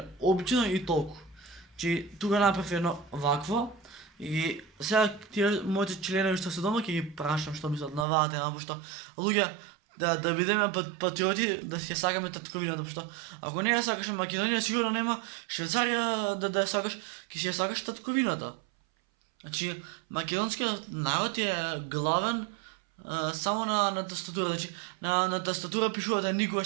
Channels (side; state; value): left; drops out; at 8.1 s